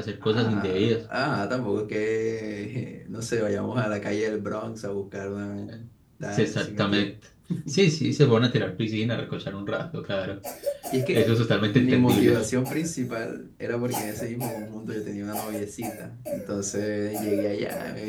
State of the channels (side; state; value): both; identical; correlation 1.00